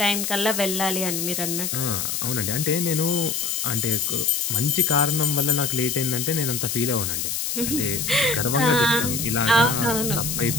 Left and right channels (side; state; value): left; noise; hiss, 2 dB below the sound